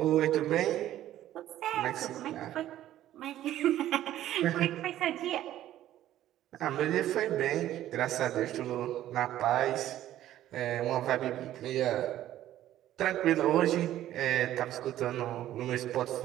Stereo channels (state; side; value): quieter; left; 13.0 dB